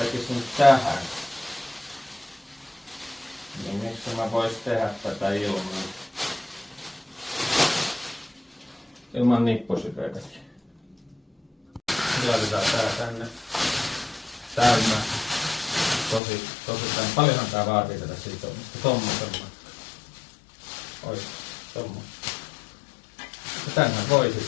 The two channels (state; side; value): drops out; right; at 16.2 s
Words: tähän. Niin miksi mä vois tehdä tätä ilman nippusiteitäkin. Laitetaan tää tänne täynnä. Tosi tämän. Paljonhan tää vaatii tätä sitomista. Tommosen. Ois, tommosen. Ja tänhän voi sit